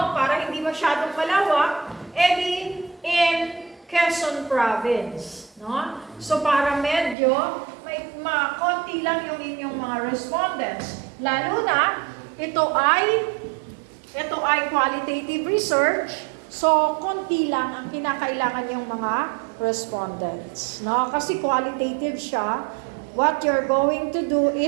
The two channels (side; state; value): left; drops out; at 7.2 s